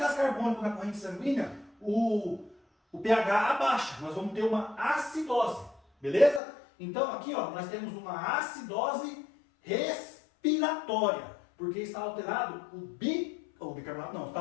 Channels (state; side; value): drops out; right; at 6.4 s